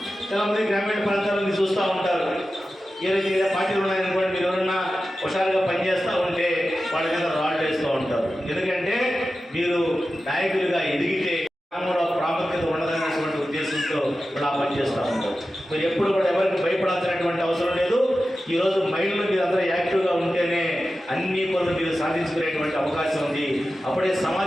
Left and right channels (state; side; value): normal; both; correlation 0.93